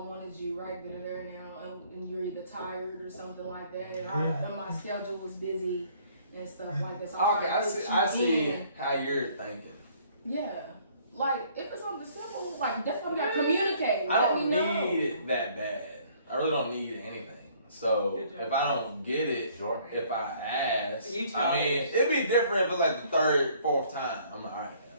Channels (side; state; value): both; inverted; correlation -0.60